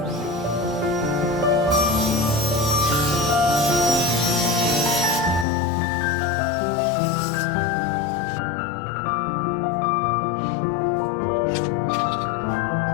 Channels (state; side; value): drops out; right; at 5.5 s